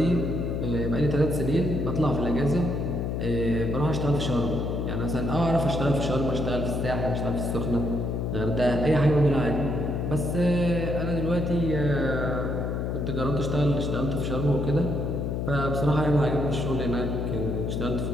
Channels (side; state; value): left; noise; hum, 1 dB below the sound